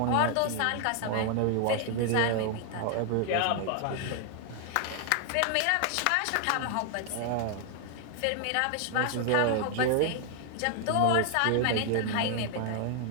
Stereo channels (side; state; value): both; different; correlation 0.00